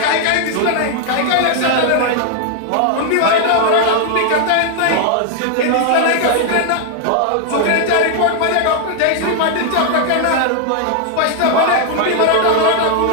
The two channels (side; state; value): both; different; correlation 0.00